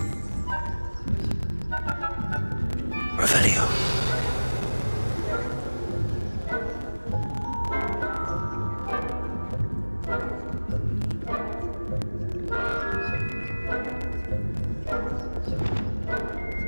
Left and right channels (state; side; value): inverted; both; correlation -1.00